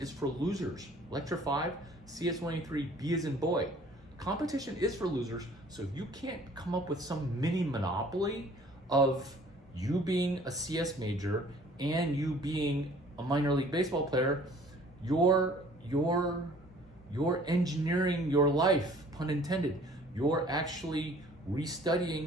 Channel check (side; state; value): both; normal; correlation 0.53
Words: for losers. Lecture 5, CS 183B as in boy. Competition is for losers, so if you can't come up with some mini monopoly of you being a CS major and you being a minor league baseball player, you're engineering your life, pun intended. You're actually